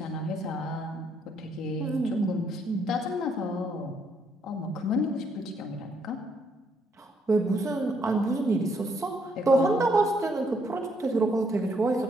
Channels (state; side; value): normal; both; correlation 0.72